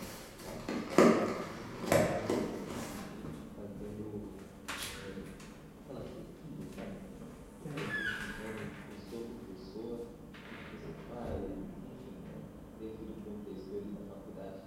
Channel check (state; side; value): identical; both; correlation 1.00